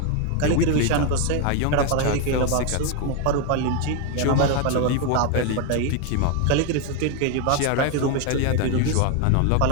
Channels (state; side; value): different; both; correlation 0.01